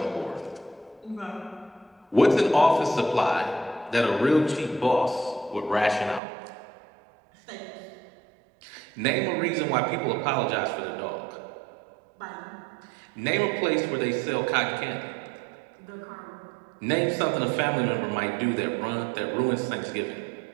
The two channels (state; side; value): drops out; left; at 6.2 s